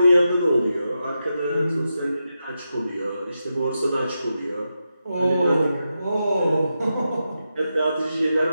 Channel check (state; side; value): inverted; both; correlation -0.88